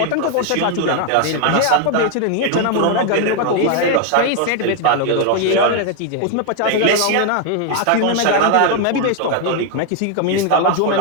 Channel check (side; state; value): both; different; correlation 0.01